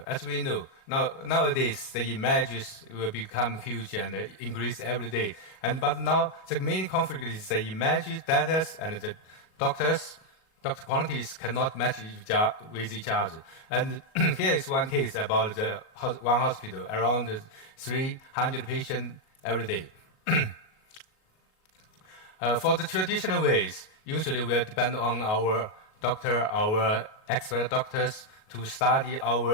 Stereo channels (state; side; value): late; right; 37 ms